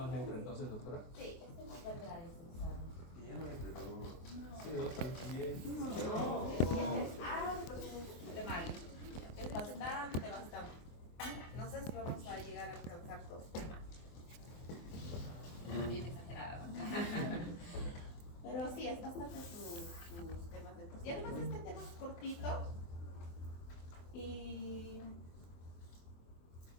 entra entonces, doctora? Sí, este no va a entrar en ese examen. Y ya no entra, no. Sí, doctora. De mal. Es bastante, bastante. No sé si vamos a llegar a alcanzar dos temas. Bien exagerada, ¿no? Pero sí, es bastante sus temas de... Y además este tema es cortito. Y...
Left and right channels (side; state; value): right; late; 24 ms